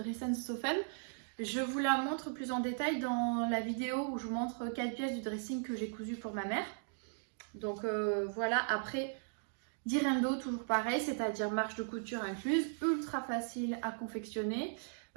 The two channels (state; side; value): silent; left; digital silence